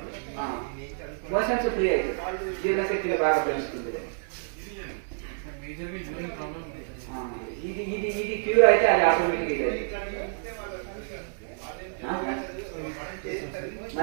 మోషన్స్ ఫ్రీ అవుతుంది, జీర్ణశక్తి బాగా పెంచుతుంది. ఇది క్యూర్ అయితే అది ఆటోమేటిక్ ఇది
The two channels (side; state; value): left; silent; digital silence